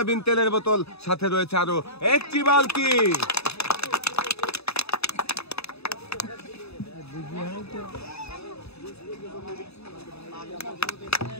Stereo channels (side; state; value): right; late; 0.79 ms